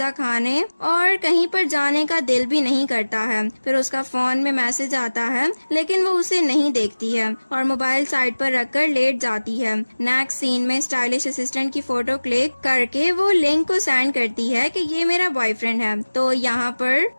खाने और कहीं पर जाने का दिल भी नहीं करता है। फिर उसका फोन में मैसेज आता है, लेकिन वो उसे नहीं देखती है और मोबाइल साइड पर रखकर लेट जाती है। नेक्स्ट सीन में स्टाइलिश असिस्टेंट की फोटो क्लिक करके वो लिंक को सेंड करती है कि ये मेरा बॉयफ्रेंड है। तो यहाँ पर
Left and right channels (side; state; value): both; inverted; correlation -1.00